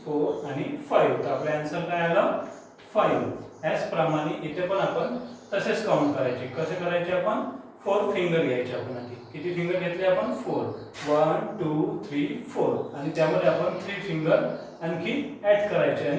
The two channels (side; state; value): both; identical; correlation 1.00